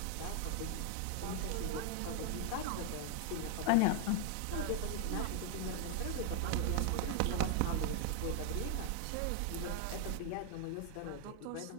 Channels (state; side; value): different; both; correlation 0.00